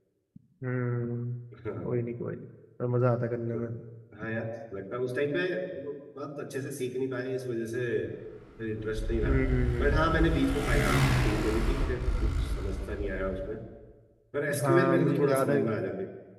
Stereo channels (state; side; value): identical; both; correlation 1.00